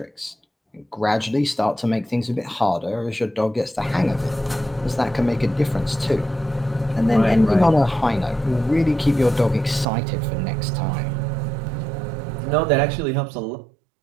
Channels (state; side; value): drops out; left; at 9.9 s